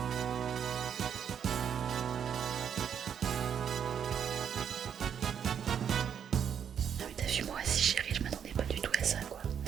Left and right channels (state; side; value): quieter; left; 8.2 dB